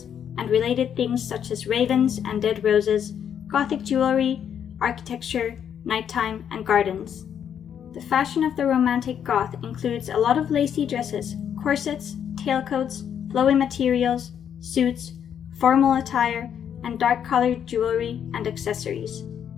and related things such as ravens and dead roses, gothic jewelry, architecture, nighttime, and gardens. The fashion of the Romantic goth includes a lot of lacy dresses, corsets, tailcoats, flowy materials, suits, formal attire, and dark-colored jewelry and accessories.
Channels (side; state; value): right; quieter; 8.7 dB